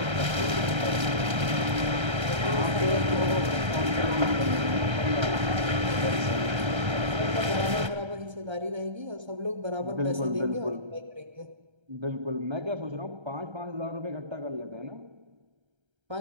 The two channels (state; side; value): late; left; 1.3 ms